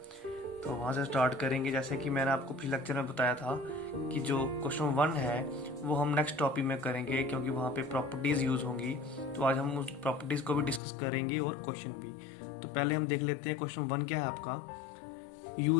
तो वहाँ से स्टार्ट करेंगे। जैसे कि मैंने आपको पिछले लेक्चर में बताया था कि जो क्वेश्चन 1 है वो हम नेक्स्ट टॉपिक में करेंगे, क्योंकि वहाँ पे प्रॉपर्टीज़ यूज़ होंगी। तो आज हम उस प्रॉपर्टीज़ को भी डिस्कस करेंगे और क्वेश्चन भी। तो पहले हम देख लेते हैं क्वेश्चन 1 क्या है आपका।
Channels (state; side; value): drops out; right; at 10.8 s